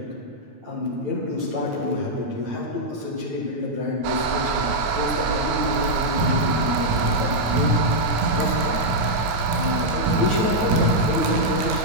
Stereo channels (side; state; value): left; late; 9.1 ms